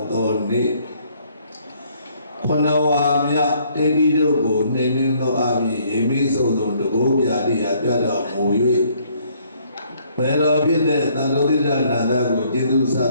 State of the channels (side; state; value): both; inverted; correlation -0.65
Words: mudoni. Konawamya tedi dogo nening do abi emi sodon dogo biadi ada muyui. Pero bide tanuri nada go jedu